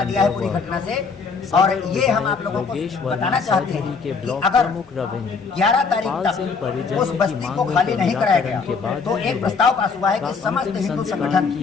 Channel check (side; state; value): right; quieter; 5.1 dB